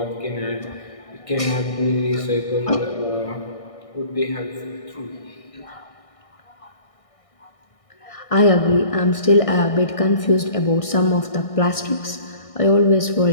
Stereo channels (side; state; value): right; late; 1.6 ms